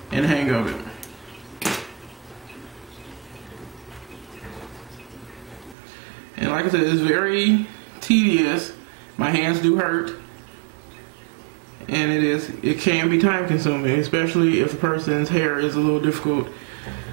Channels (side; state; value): left; drops out; at 5.8 s